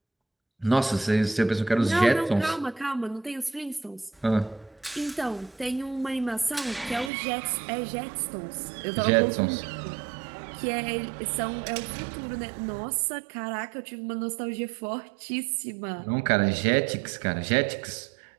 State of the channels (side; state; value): left; drops out; at 7.1 s